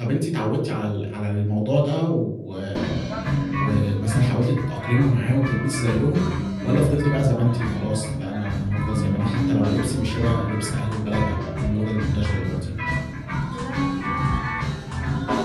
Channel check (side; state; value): both; identical; correlation 1.00